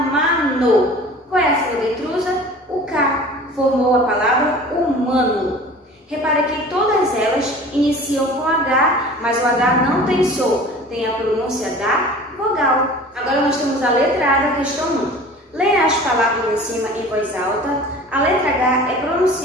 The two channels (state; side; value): normal; both; correlation 0.42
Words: Qual é a sílaba intrusa? O K. Formou a palavra humano. Repara que todas elas iniciam com H, mas o H não tem som, tem a pronúncia da vogal. Agora nós temos a letra A da questão 1. Leia as palavras em cima em voz alta. A letra H é